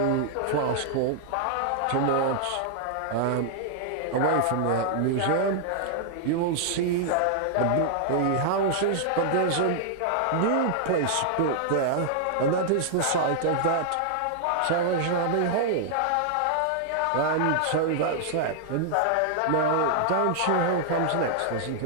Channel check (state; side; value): different; both; correlation -0.01